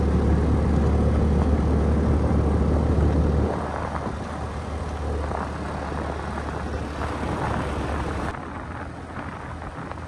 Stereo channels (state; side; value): identical; both; correlation 1.00